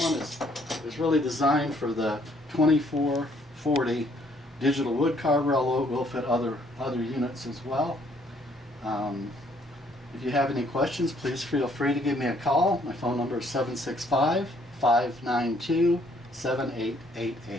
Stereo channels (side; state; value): both; normal; correlation 0.65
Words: is really designed for the 2440 Digital Woodcarver, although it will fit other units as well. If you have any questions, please feel free to give me a call. My phone number is